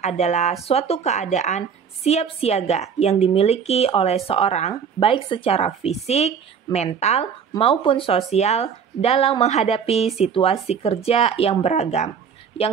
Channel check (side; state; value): left; quieter; 6.9 dB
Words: adalah suatu keadaan siap siaga yang dimiliki oleh seorang baik secara fisik, mental, maupun sosial dalam menghadapi situasi kerja yang beragam,